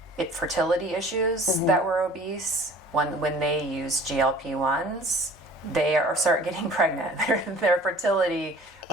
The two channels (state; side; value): normal; both; correlation 0.48